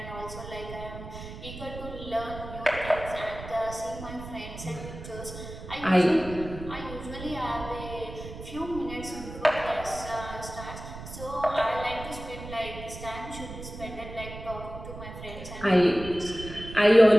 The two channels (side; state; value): right; noise; rumble, 12 dB below the sound